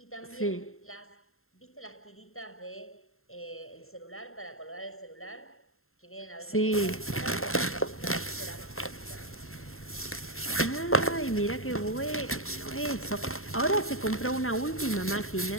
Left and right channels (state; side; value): late; right; 0.61 ms